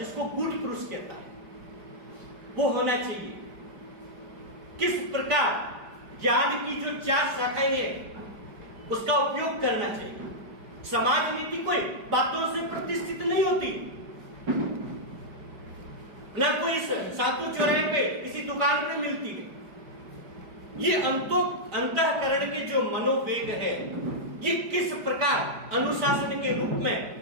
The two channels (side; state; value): left; late; 5.1 ms